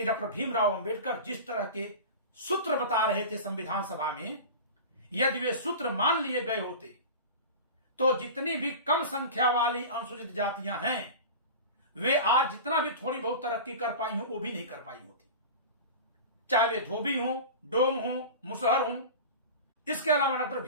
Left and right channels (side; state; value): both; inverted; correlation -0.32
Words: डॉक्टर भीमराव अंबेडकर जिस तरह के सूत्र बता रहे थे संविधान सभा में, यदि वे सूत्र मान लिए गए होते तो जितनी भी कम संख्या वाली अनुसूचित जातियां हैं वे आज जितना भी थोड़ी बहुत तरक्की कर पाई हों वो भी नहीं कर पाई होती, चाहे वे धोबी हों, डोम हों, मुसहर हों। इसके अलावा डॉक्टर